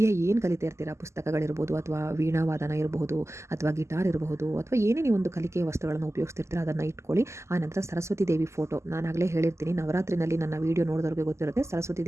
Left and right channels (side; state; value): left; late; 0.13 ms